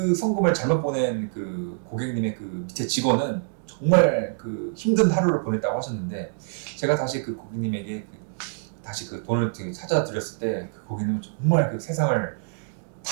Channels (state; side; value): silent; left; 61 dB below the other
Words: 송금을 잘못 보낸 그 고객님의 그 밑에 직원은 정말 그 힘든 하루를 보냈다고 하셨는데 제가 다시 그 고객님에게 다시 그 돈을 찾아드렸을 때 그 고객님은 정말 그 세상을